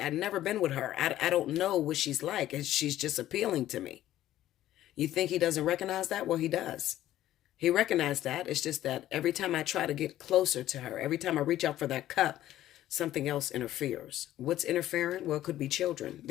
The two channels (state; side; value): quieter; right; 13.5 dB